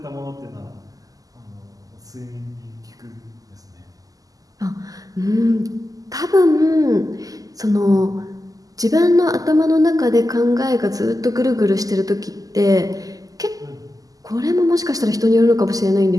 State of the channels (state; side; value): late; left; 0.17 ms